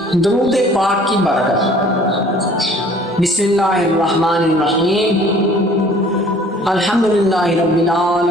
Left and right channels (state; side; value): normal; both; correlation 0.52